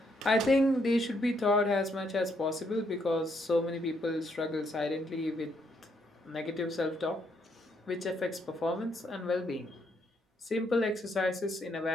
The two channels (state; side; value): normal; both; correlation 0.73